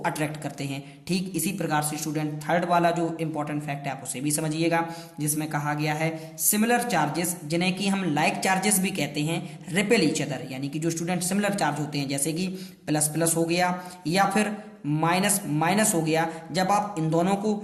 अट्रैक्ट करते हैं। ठीक इसी प्रकार से स्टूडेंट थर्ड वाला जो इंपॉर्टेंट फैक्ट है आप उसे भी समझिएगा, जिसमें कहा गया है सिमिलर चार्जेस जिन्हें कि हम लाइक चार्जेस भी कहते हैं रिपेल ईच अदर, यानी कि जो स्टूडेंट सिमिलर चार्ज होते हैं जैसे कि प्लस प्लस हो गया या फिर माइनस माइनस हो गया, जब आप इन दोनों को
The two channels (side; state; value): both; identical; correlation 1.00